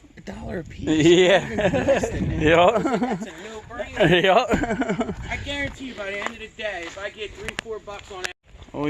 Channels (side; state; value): both; identical; correlation 1.00